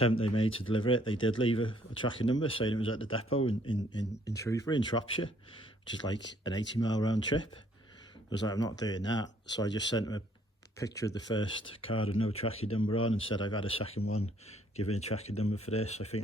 they made to deliver it, they did leave a tracking number saying it was at the depot in Shrewsbury in Shropshire, which is like an 80-mile round trip. I was like, I'm not doing that, so I just sent them a picture of the first card with no tracking number on and said I've had a second one, give me a tracking number for this. I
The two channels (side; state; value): both; normal; correlation 0.64